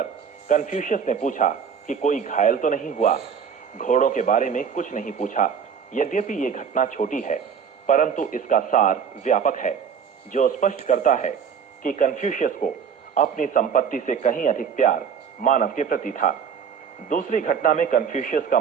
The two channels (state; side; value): quieter; left; 7.0 dB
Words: कन्फ्यूशियस ने पूछा कि कोई घायल तो नहीं हुआ। घोड़ों के बारे में कुछ नहीं पूछा। यद्यपि ये घटना छोटी है, परंतु इसका सार व्यापक है, जो स्पष्ट करता है कि कन्फ्यूशियस को अपनी संपत्ति से कहीं अधिक प्यार मानव के प्रति था। दूसरी घटना में कन्फ्यूशियस का